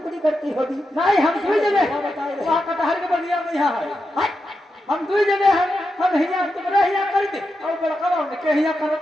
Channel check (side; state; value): both; normal; correlation 0.87